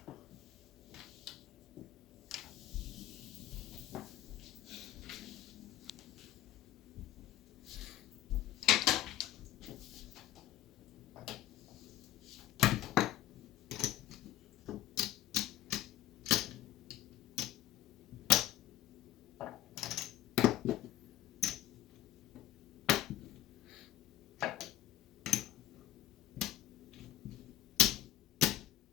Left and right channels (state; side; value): quieter; right; 13.1 dB